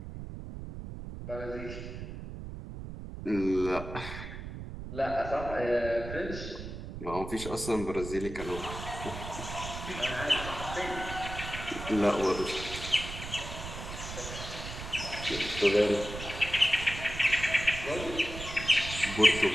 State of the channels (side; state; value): right; noise; rumble, 9 dB below the sound